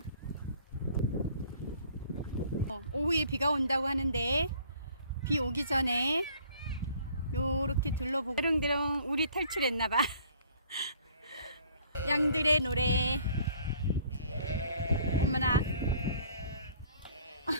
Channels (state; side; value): inverted; both; correlation -0.56